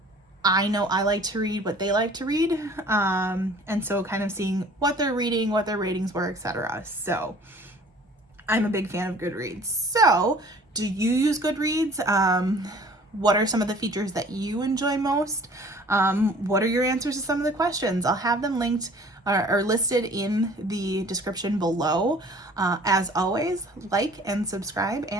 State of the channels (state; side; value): normal; both; correlation 0.50